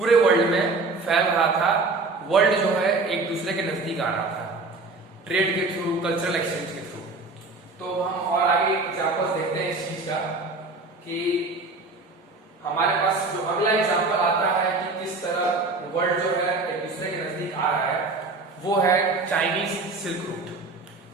वर्ल्ड में फैल रहा था, वर्ल्ड जो है एक दूसरे के नजदीक आ रहा था ट्रेड के थ्रू, कल्चरल एक्सचेंज के थ्रू। तो हम और आगे एग्जांपल्स देखते हैं इस चीज का कि हमारे पास जो अगला एग्जांपल आता है कि किस तरह वर्ल्ड जो है एक दूसरे के नजदीक आ रहा है, वो है Chinese silk route.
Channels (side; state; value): left; quieter; 3.6 dB